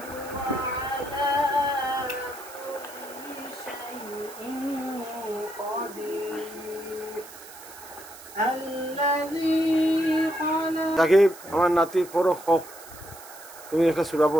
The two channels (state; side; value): noise; right; hiss, 17 dB below the sound